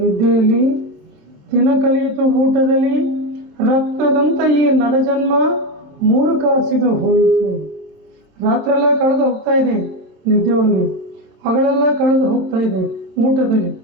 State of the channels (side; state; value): left; late; 26 ms